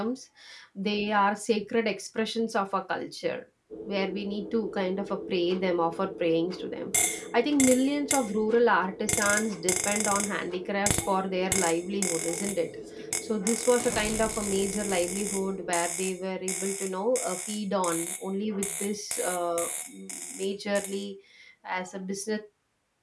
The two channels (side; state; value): both; identical; correlation 1.00